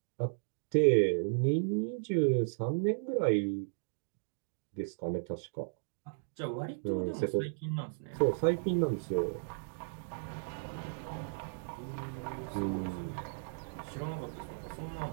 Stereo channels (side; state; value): left; silent; digital silence